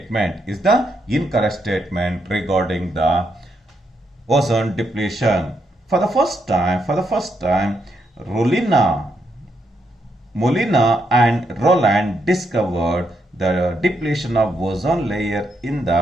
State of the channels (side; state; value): both; normal; correlation 0.79